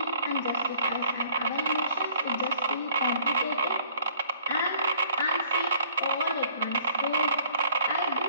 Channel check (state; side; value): inverted; both; correlation -0.56